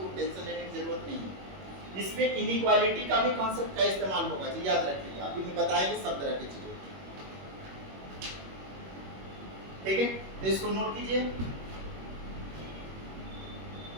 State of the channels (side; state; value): left; late; 21 ms